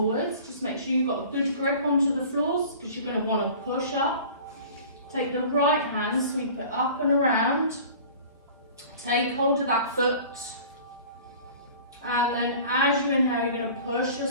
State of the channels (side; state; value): both; inverted; correlation -0.43